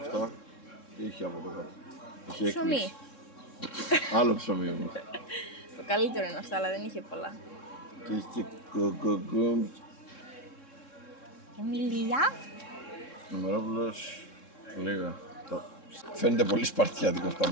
Αυτά. Τι έχει από εδώ κάτω? Έχει Ψωμί. έκπληξη. Άλλο ψωμί όμως. Το καλύτερο είναι αυτά, αλλά δεν είχε πολλά. Και έχει και κοκοκόμ. Και μιλιά. Νομερόπουλος. Λίγα. Φαίνεται πολύ σπαρτιάτικος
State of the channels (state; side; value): late; right; 3.7 ms